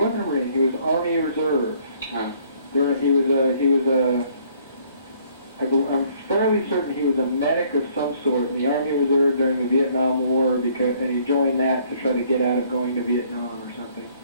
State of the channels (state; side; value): inverted; both; correlation -0.62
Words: a Marine, he was Army Reserve. Oh. I'm fairly certain he was a medic of some sort in the Army Reserve during the Vietnam War, and he joined that to try to get out of going to Vietnam or something.